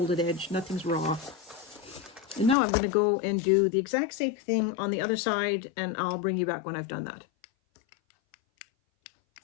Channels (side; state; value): right; drops out; at 2.6 s